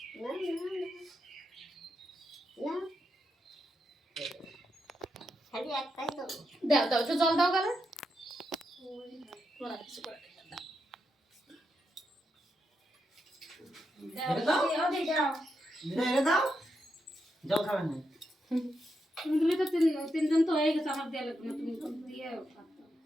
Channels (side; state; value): both; normal; correlation 0.84